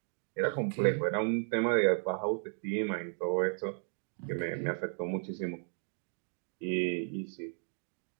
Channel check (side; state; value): left; silent; 55 dB below the other